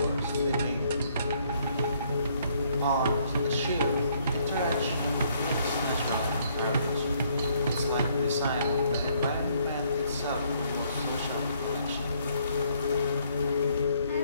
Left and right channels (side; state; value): both; inverted; correlation -0.67